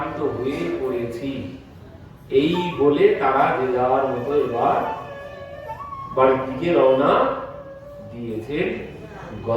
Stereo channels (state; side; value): identical; both; correlation 1.00